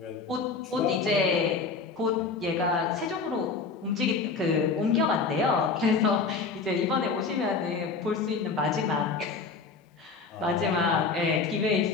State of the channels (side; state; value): right; quieter; 4.6 dB